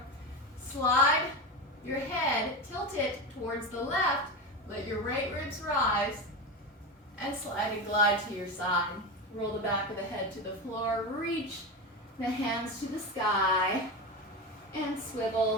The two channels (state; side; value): normal; both; correlation 0.20